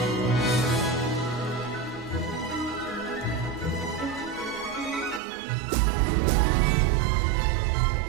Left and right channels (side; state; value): left; drops out; at 5.2 s